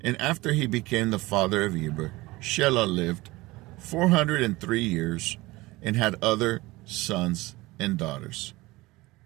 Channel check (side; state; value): left; quieter; 20.6 dB